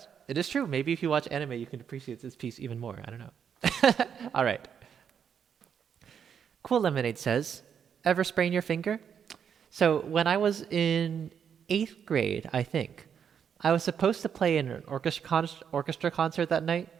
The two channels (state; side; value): quieter; left; 7.7 dB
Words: it is true. Maybe if you watch anime, you can appreciate this piece even more. I don't know. All right. Cool Lemonade says, ever sprain your finger? So when I was in 8th grade, I think, I was supposed to play in an orchestra concert that night,